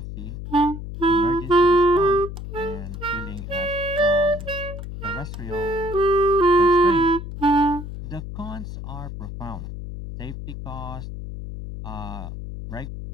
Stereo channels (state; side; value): noise; left; hum, 9 dB below the sound